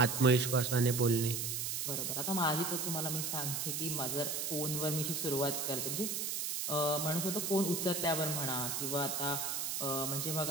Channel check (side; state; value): right; noise; hiss, 1 dB below the sound